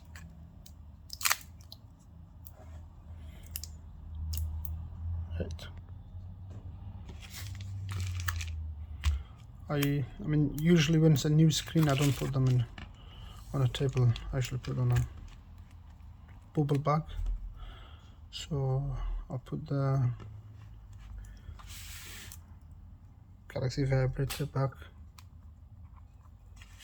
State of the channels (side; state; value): both; identical; correlation 1.00